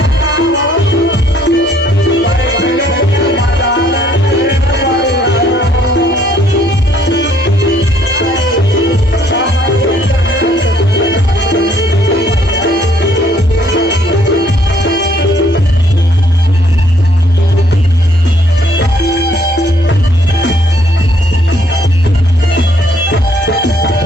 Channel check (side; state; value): both; normal; correlation 0.65